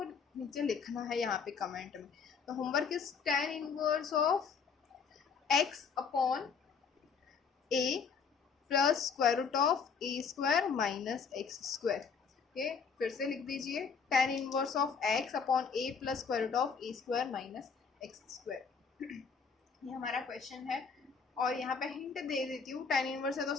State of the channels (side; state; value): right; quieter; 5.8 dB